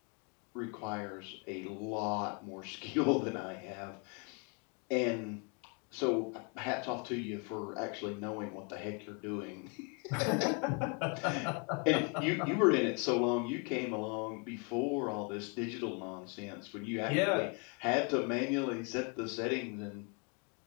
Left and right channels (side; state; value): right; quieter; 35.7 dB